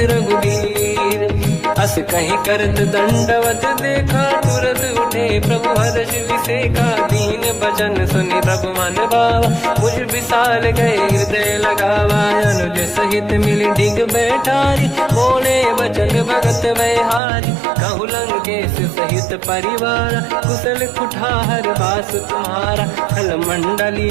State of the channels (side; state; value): left; drops out; at 17.2 s